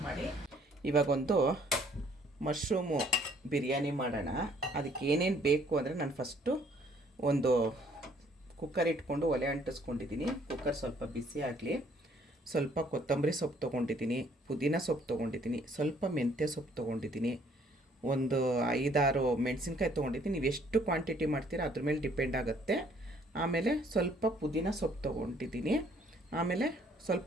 ಮಾಡಿ. ಇವಾಗೊಂದು ಮಶ್ರೂಮು ಬಿರಿಯಾನಿ ಮಾಡೋಣ. ಅದಕ್ಕೆ ಏನೇನು ಬೇಕು ಅಂದರೆ ನಾನು ಫಸ್ಟು ಒಂದು ಕುಕ್ಕರ್ ಇಟ್ಕೊಂಡು ಒಲೆ ಅಂಟಿಸ್ಕೊಂಡಿದ್ದೀನಿ. ಕುಕ್ಕರ್ ಸ್ವಲ್ಪ ಬಿಸಿ ಆಗಲಿ. ಸ್ವಲ್ಪ ಕೊತ್ತಂಬರಿ ಸೊಪ್ಪು ತೊಗೊಂಡಿದ್ದೀನಿ, ಪುದೀನ ಸೊಪ್ಪು ತೊಗೊಂಡಿದ್ದೀನಿ, ಸ್ವಲ್ಪ ಮೆಂತ್ಯ ಸೊಪ್ಪು ತೊಗೊಂಡಿದ್ದೀನಿ, ಒಂದು 5-6 ಮೆಣಸಿನ್ಕಾಯಿ ತೊಗೊಂಡಿದ್ದೀನಿ. ನೀವು ಎಷ್ಟು ಕ್ವಾಂಟಿಟಿ ಮಾಡ್ತೀರಾ ಅದ್ರ ಮೇಲೆ ಡಿಪೆಂಡ್ ಆಗುತ್ತೆ. ಆಮೇಲೆ ಸ್ವಲ್ಪ ಪುದೀನ ಸೊಪ್ಪು ತೊಗೊಂಡಿದ್ದೀನಿ. ಆಮೇಲೆ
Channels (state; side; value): normal; both; correlation 0.62